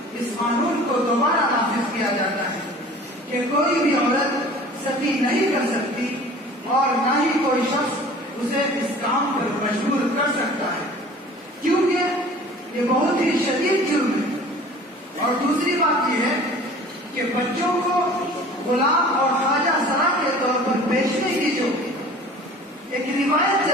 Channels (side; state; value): both; normal; correlation 0.45